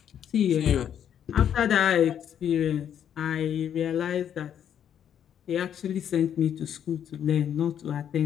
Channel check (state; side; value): quieter; right; 9.3 dB